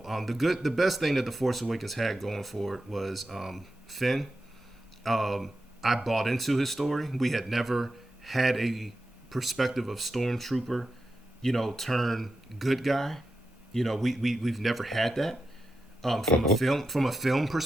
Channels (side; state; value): both; normal; correlation 0.89